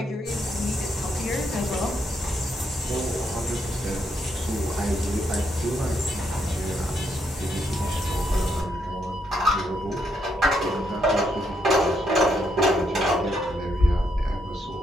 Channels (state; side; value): normal; both; correlation 0.77